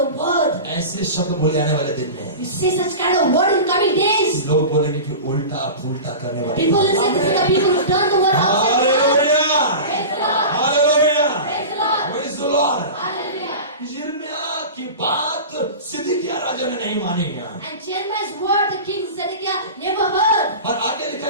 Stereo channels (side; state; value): both; inverted; correlation -0.31